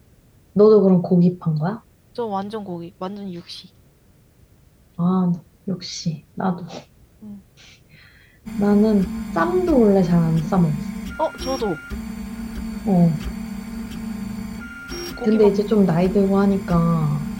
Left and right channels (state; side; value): identical; both; correlation 1.00